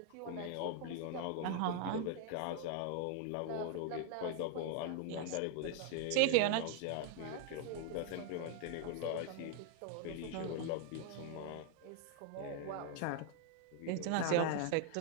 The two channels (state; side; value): different; both; correlation 0.00